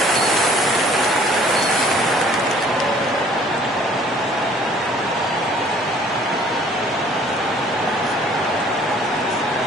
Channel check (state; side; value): normal; both; correlation 0.56